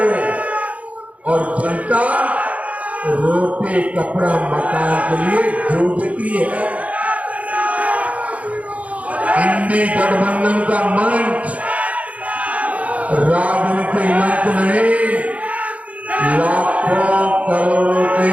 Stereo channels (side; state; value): left; late; 0.067 ms